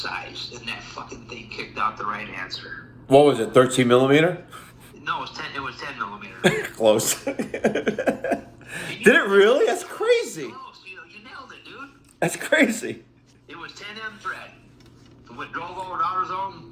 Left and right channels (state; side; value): identical; both; correlation 1.00